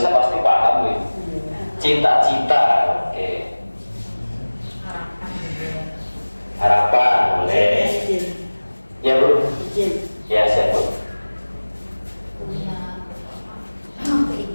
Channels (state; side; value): inverted; both; correlation -1.00